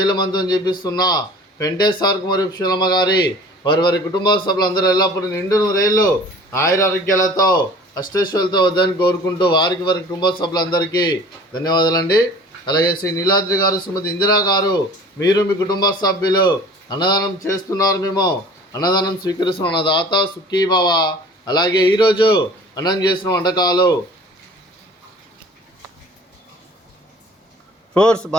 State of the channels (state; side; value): normal; both; correlation 0.45